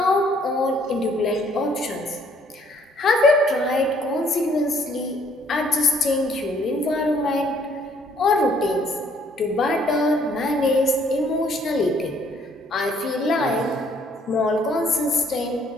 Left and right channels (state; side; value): normal; both; correlation 0.63